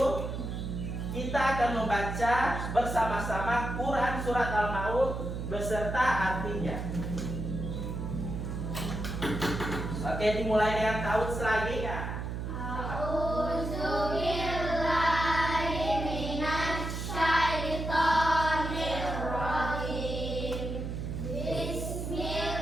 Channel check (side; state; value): right; noise; hum, 4 dB below the sound